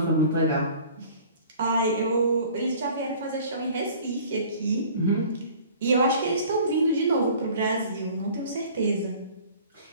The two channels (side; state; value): both; inverted; correlation -0.48